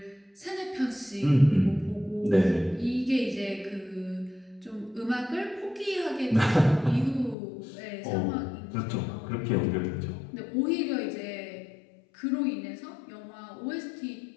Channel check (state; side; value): drops out; right; at 7.4 s